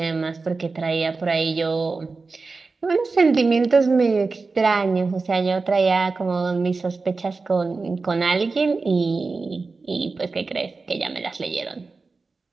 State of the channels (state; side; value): quieter; left; 4.0 dB